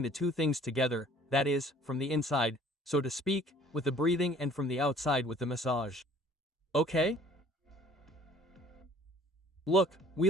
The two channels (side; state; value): both; normal; correlation 0.54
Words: the two things together, that is, from the inside, so to speak, with the breathing and from the outside with the massage. Okay? Look,